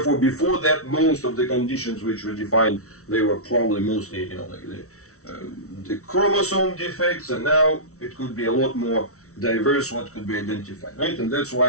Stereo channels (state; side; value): late; right; 0.64 ms